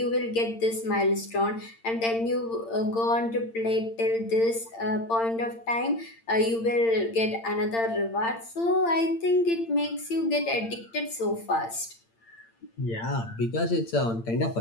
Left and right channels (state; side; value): late; right; 8.8 ms